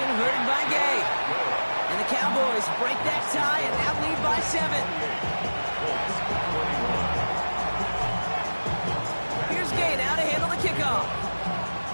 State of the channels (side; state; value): both; inverted; correlation -1.00